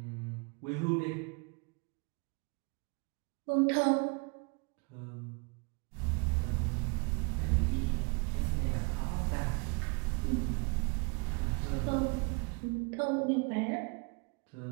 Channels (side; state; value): left; quieter; 33.2 dB